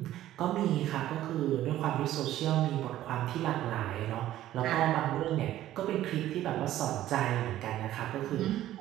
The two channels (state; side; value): quieter; left; 13.5 dB